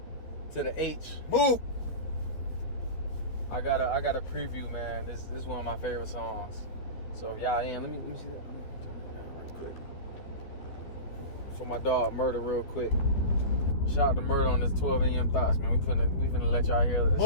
To the H. Move. I got a preview, man. This is one of my favorite songs. So if y'all in, let me see that. Let me turn it down real quick. For my dog Murder, real quick. Shout out to Murder on this 12 a.m. thoughts, man. We finna let y'all hear this.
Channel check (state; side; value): late; right; 13 ms